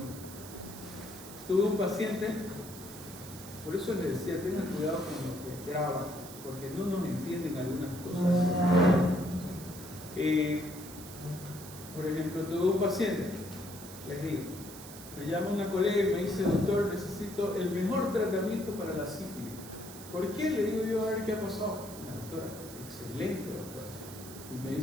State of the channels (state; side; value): noise; right; hiss, 14 dB below the sound